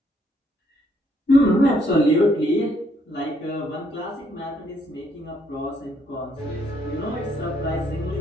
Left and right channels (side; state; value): both; normal; correlation 0.70